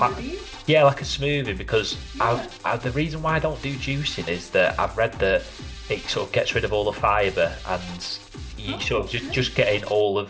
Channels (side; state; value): both; identical; correlation 1.00